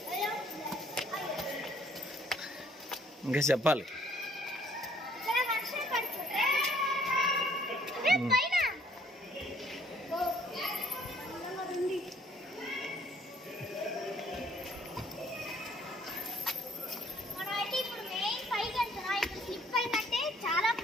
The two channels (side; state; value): both; normal; correlation 0.62